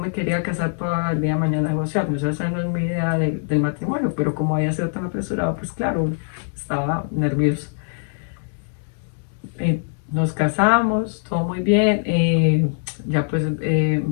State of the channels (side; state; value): right; silent; digital silence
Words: quería casar para el día de mañana negociar, o sea, esa no es mi idea del matrimonio, pero como había sido tan apresurado, pues claro, estaba nerviosa. Nos casamos, todo muy bien. Ya pues